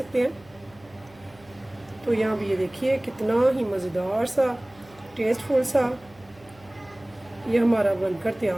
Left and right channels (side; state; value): right; noise; hum, 26 dB below the sound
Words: हैं। तो यहाँ भी ये देखिए कितना ही मज़ेदार सा टेस्टफुल सा ये हमारा बनकर